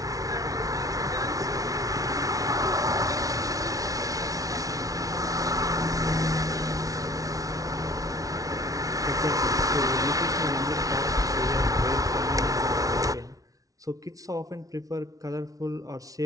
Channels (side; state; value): left; late; 0.17 ms